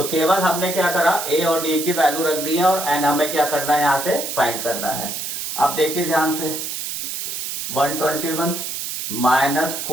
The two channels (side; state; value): right; noise; hiss, 5 dB below the sound